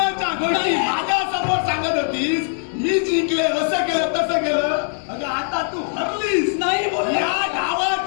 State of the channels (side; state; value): right; silent; 56 dB below the other